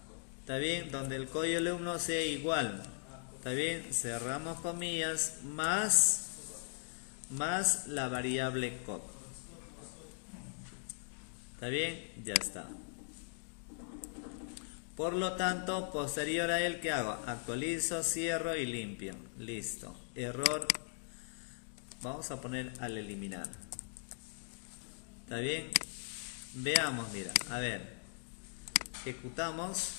¿está bien? Donde el código de alumno sea igual, ¿está bien? Cerramos comillas, más la variable code. ¿Está bien? Ya está. Por lo tanto, posterior a él, ¿qué hago? Actualizo, cierro y limpio. Listo. Error. Vamos a poner al eliminar. ¿Está bien? Veamos, mira. A ver. Ejecutamos.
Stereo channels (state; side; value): silent; right; digital silence